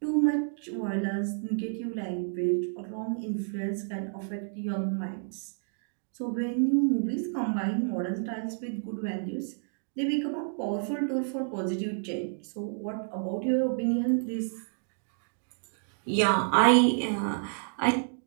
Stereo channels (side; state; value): left; silent; digital silence